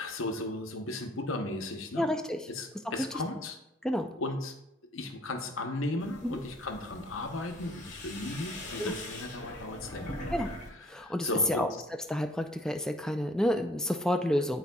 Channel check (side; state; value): both; normal; correlation 0.59